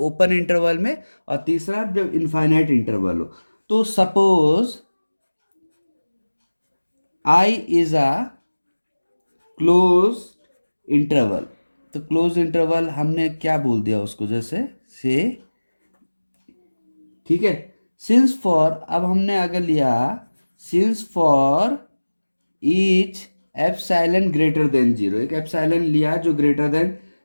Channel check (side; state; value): both; inverted; correlation -1.00